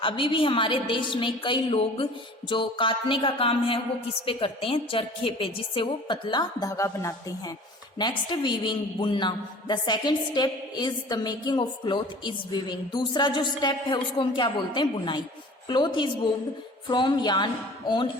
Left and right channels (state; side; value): normal; both; correlation 0.45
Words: अभी भी हमारे देश में कई लोग जो काटने का काम है वो किस पे करते हैं? चरखे पे, जिससे वो पतला धागा बनाते हैं। नेक्स्ट, वीविंग, बुनना। The second step is the making of cloth is weaving. दूसरा जो स्टेप है उसको हम क्या बोलते हैं? बुनाई। Cloth is woven from yarn on